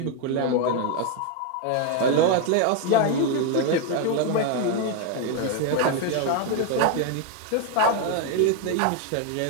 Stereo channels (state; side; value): different; both; correlation 0.01